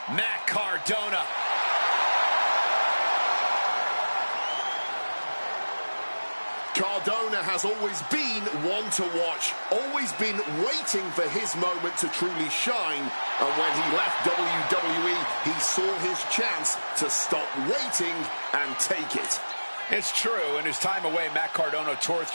Matt Cardona. Cardona has always been one to watch, always been waiting for his moment to truly shine, and when he left WWE, he saw his chance to stop waiting and take it. It's true. In his time away, Matt Cardona tore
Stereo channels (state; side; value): inverted; both; correlation -1.00